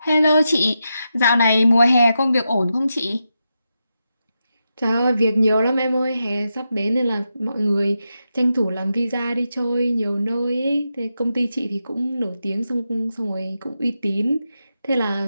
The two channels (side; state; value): both; inverted; correlation -0.87